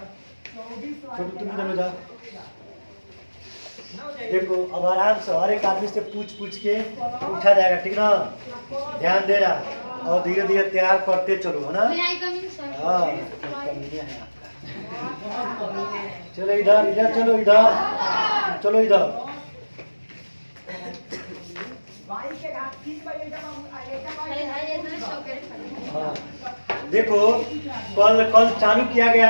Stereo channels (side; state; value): both; inverted; correlation -1.00